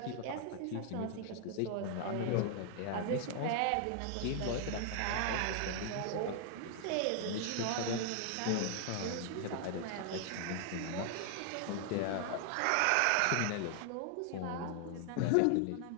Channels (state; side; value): different; both; correlation 0.00